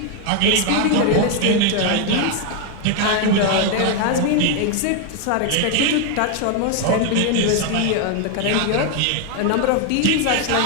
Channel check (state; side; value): different; both; correlation 0.01